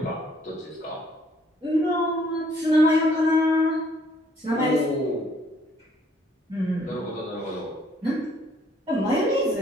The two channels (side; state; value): both; normal; correlation 0.64